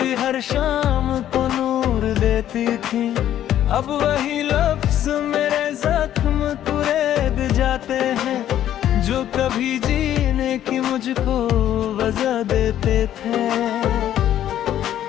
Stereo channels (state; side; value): quieter; right; 11.5 dB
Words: हर शाम को नूर देती थी। अब वही लफ्ज़ मेरे जख्म कुरेद जाते हैं, जो कभी जीने की मुझको वजह देते थे।